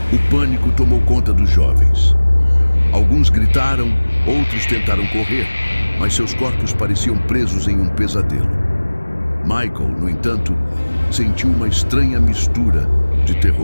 O pânico tomou conta dos jovens. Alguns gritaram, outros tentaram correr, mas seus corpos pareciam presos em um pesadelo. Michael, no entanto, sentiu uma estranha mistura de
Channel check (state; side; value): inverted; both; correlation -1.00